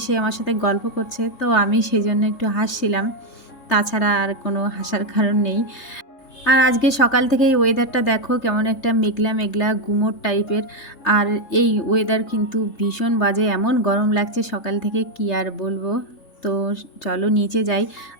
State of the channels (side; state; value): right; late; 3.3 ms